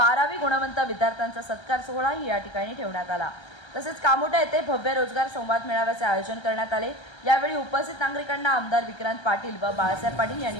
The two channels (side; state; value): right; late; 1.3 ms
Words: गुणवंत विद्यार्थ्यांचा सत्कार सोहळाही या ठिकाणी ठेवण्यात आला। तसेच कामोटा येथे भव्य रोजगार संवाद मेळाव्याचे आयोजन करण्यात आले। यावेळी उपस्थित नागरिकांना आमदार विक्रांत पाटील व बाळासाहेब पाटील यांनी